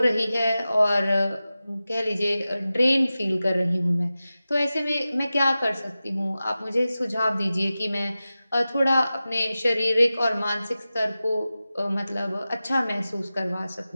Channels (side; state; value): both; inverted; correlation -0.95